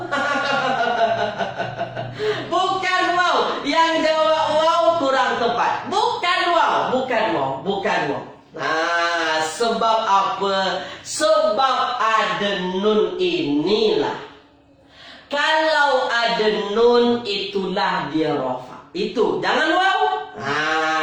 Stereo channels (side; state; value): both; identical; correlation 1.00